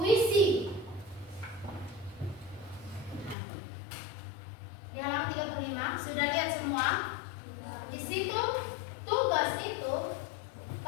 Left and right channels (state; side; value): drops out; right; at 3.4 s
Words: Di halaman 35 sudah lihat semua? Di situ tugas itu